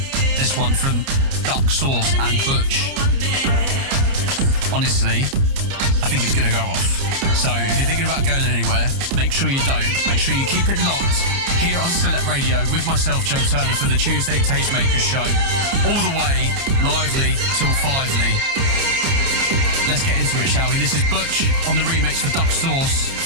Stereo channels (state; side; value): late; left; 29 ms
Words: This one from Duck Sauce and Butch. Honestly, I think it's going to go off. So if you're thinking about going anywhere, make sure you don't. Make sure you keep it locked here on Select Radio with myself, Joe Turner, for the Tuesday Tastemakers show. All the way, lively, till 5ly. Let's get into it, shall we? This is Butch on the remix for Duck Sauce,